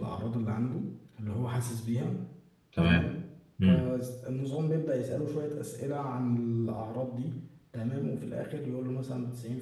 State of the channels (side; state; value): both; identical; correlation 1.00